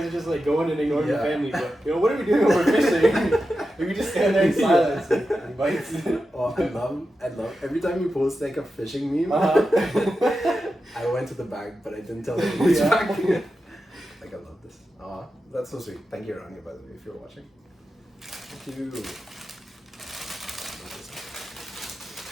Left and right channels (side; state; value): both; normal; correlation 0.90